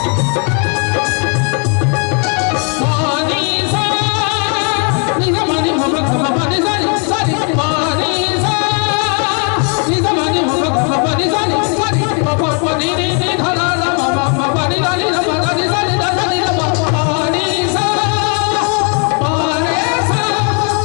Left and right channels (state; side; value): quieter; right; 38.7 dB